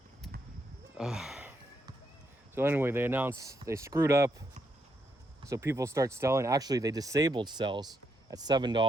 So anyway, they announced they screwed up. So people start selling. Actually, they disabled sells at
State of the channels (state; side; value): normal; both; correlation 0.78